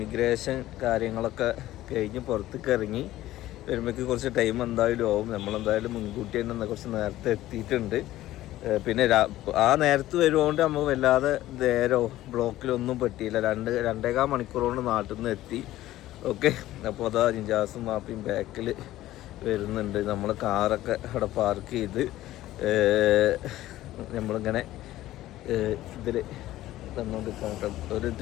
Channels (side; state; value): right; quieter; 15.1 dB